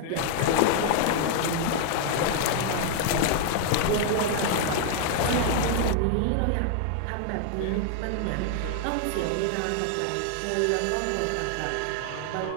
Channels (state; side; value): different; both; correlation 0.00